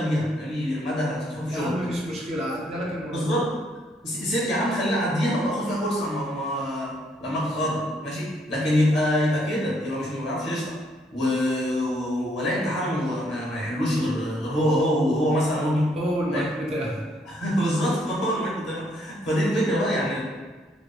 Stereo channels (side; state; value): both; normal; correlation 0.70